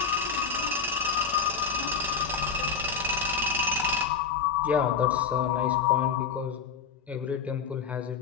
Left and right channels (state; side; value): quieter; right; 6.1 dB